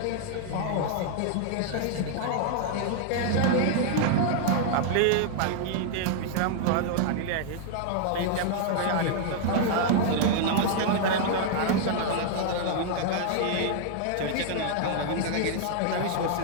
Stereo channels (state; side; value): different; both; correlation -0.01